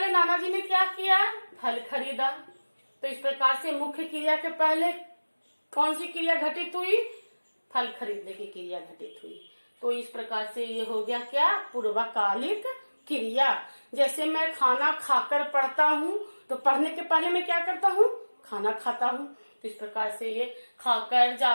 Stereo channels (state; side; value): inverted; both; correlation -1.00